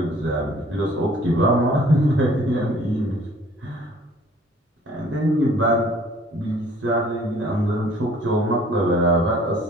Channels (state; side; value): normal; both; correlation 0.54